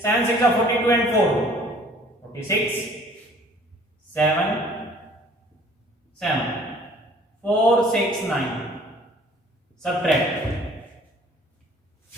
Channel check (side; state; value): both; normal; correlation 0.53